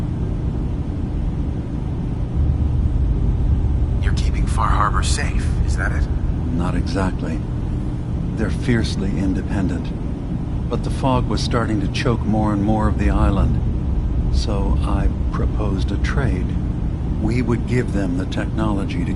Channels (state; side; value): identical; both; correlation 1.00